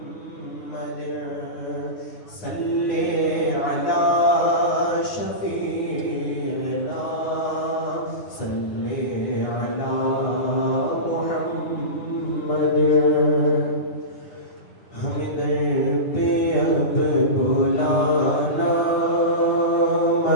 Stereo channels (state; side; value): late; right; 9.5 ms